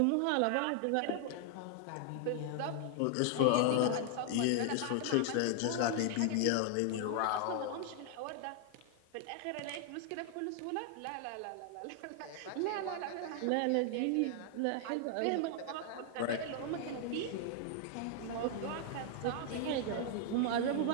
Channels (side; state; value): both; different; correlation 0.00